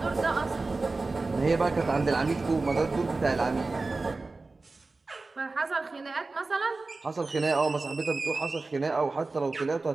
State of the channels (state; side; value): quieter; left; 3.6 dB